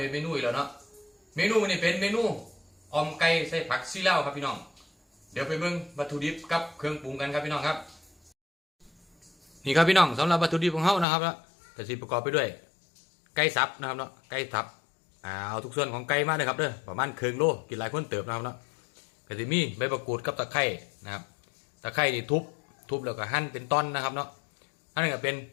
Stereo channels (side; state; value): right; drops out; at 11.1 s